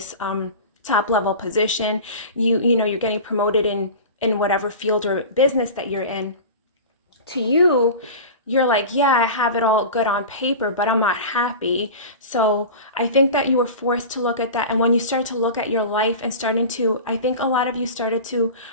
top level position, you're getting promoted in whatever field or business that you're in. To you, you're like, yeah, I have it all good on paper, but I'm not happy. So I think that you were forced to look at that. And when you start to look at your life and I think a lot of you started to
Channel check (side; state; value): both; inverted; correlation -0.32